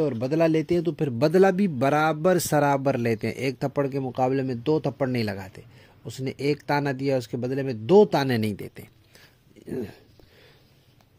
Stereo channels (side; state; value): both; identical; correlation 1.00